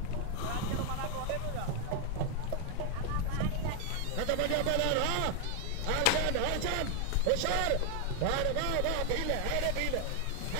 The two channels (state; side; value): different; both; correlation 0.00